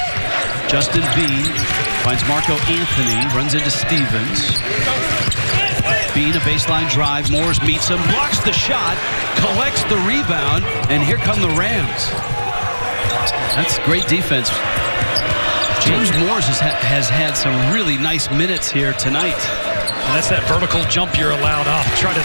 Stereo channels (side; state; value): both; inverted; correlation -1.00